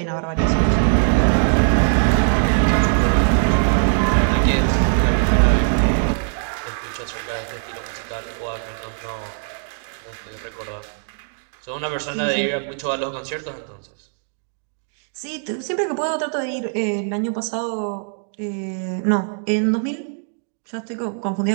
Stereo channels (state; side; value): silent; left; 62 dB below the other